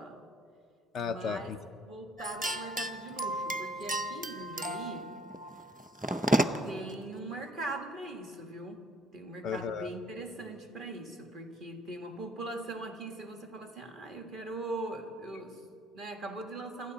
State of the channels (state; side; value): normal; both; correlation 0.60